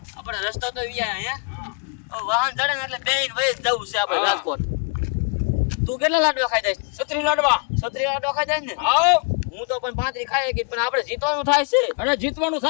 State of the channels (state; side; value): quieter; right; 37.8 dB